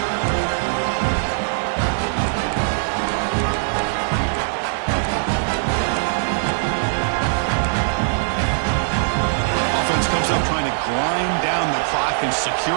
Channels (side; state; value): left; silent; digital silence